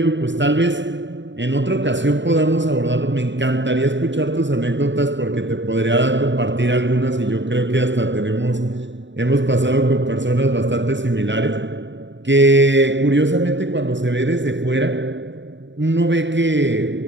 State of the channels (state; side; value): late; left; 0.53 ms